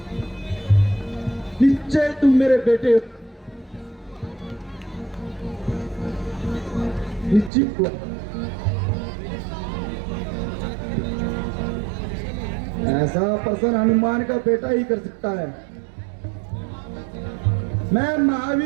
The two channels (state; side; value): drops out; left; at 7.5 s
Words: निश्चय तुम मेरे बेटे हो। निश्चित हुआ। ऐसा प्रश्न हनुमान का बेटा ही कर सकता है। मैं